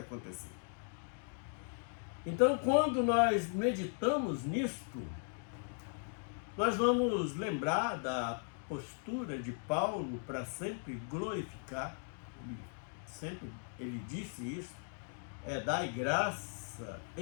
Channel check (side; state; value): right; silent; 53 dB below the other